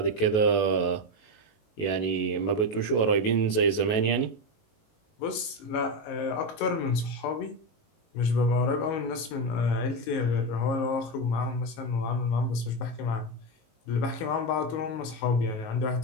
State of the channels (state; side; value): late; right; 19 ms